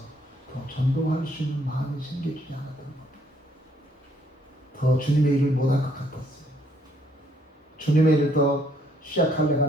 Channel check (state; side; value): normal; both; correlation 0.67